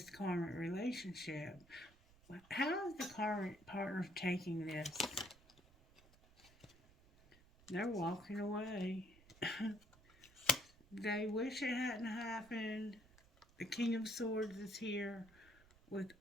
karmic relationship. How is the karmic partner taking this? They're walking away. They wish it hadn't happened. The King of Swords is here with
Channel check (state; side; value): noise; right; rumble, 26 dB below the sound